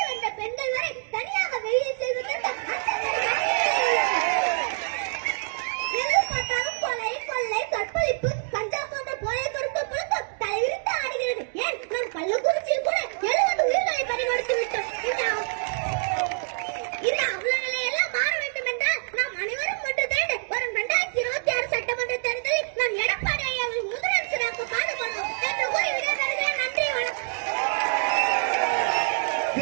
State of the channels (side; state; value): left; silent; 61 dB below the other